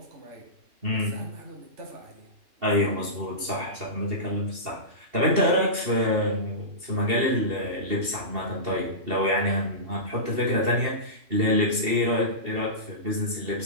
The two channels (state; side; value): late; left; 2.8 ms